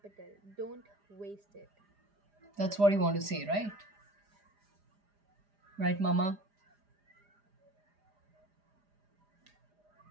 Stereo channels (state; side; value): late; left; 4.9 ms